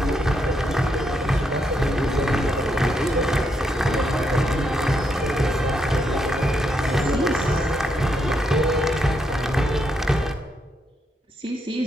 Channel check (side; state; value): both; normal; correlation 0.79